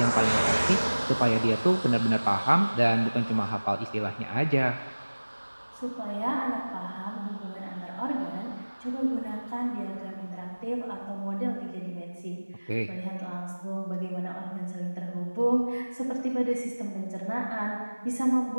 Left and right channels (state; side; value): inverted; both; correlation -1.00